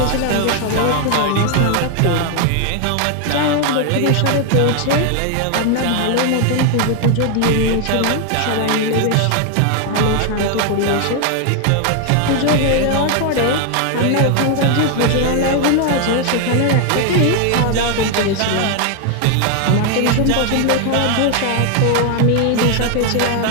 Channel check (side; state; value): both; different; correlation 0.00